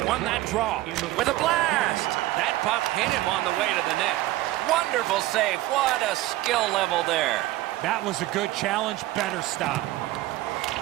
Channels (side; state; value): left; quieter; 16.7 dB